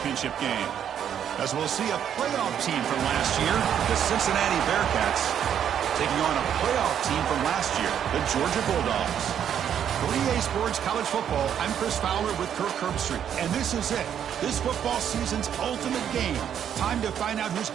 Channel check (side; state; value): left; quieter; 9.1 dB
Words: game. As we'll see a playoff team from last year, the Cincinnati Bearcats, taking on a playoff team from last year, the Georgia Bulldogs. For EA Sports College Football, I'm Chris Fowler with Kirk Herbstreit, and this is it. This football season's ultimate game. Time to find out who's